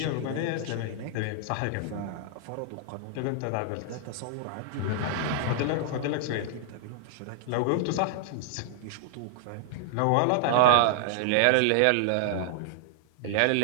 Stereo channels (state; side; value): different; both; correlation -0.01